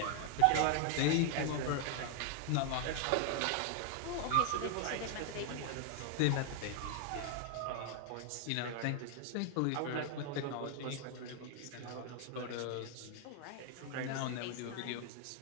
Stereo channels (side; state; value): both; different; correlation 0.00